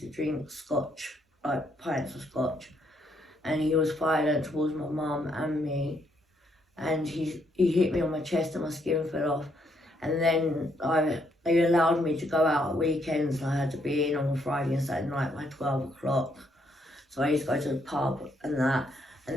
to drink scotch, like pints of scotch, and he was violent towards my mum and me, and he hit me on my chest and my skin fell off, and then they allowed me to go out at weekends and I had to be in on a Friday and Saturday night by 12 o'clock. So I used to go to the pub and that, and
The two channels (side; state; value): both; normal; correlation 0.73